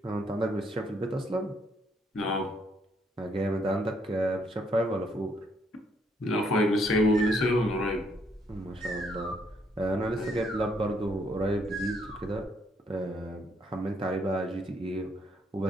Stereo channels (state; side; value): normal; both; correlation 0.70